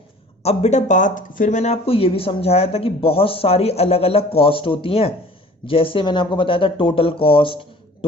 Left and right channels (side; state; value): both; normal; correlation 0.48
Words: अब बेटा बात फिर मैंने आपको ये भी समझाया था कि बहुत सारी अलग अलग कॉस्ट होती हैं। जैसे मैंने आपको बताया था total cost,